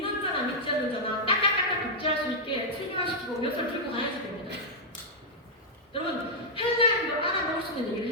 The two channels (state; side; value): normal; both; correlation -0.06